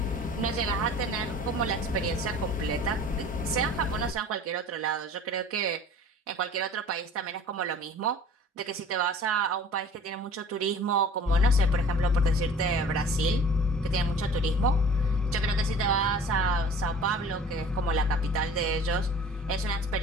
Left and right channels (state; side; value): normal; both; correlation 0.45